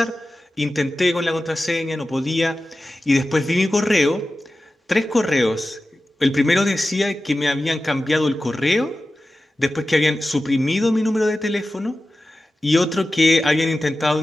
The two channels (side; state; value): both; normal; correlation 0.94